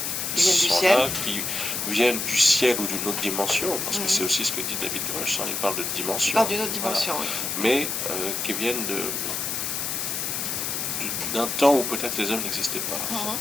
viennent du ciel ou d'une autre dimension, parce que c'est aussi ce que dit David Grush, il parle de dimension. Il parle d'une autre dimension, oui. Mais qui viennent d'un temps où peut-être les hommes n'existaient pas.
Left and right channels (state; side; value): noise; left; hiss, 2 dB below the sound